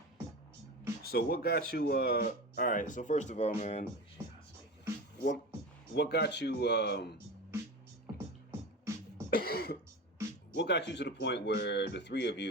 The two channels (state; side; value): normal; both; correlation 0.28